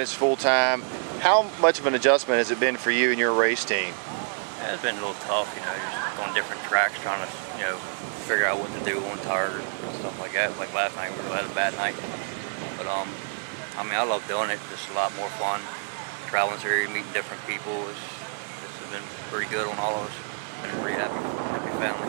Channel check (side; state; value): left; silent; 60 dB below the other